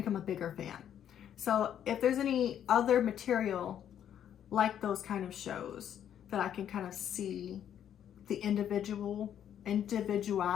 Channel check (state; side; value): quieter; right; 9.8 dB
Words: a bigger fan. So if there's any other material like those kind of shows that I can kind of see the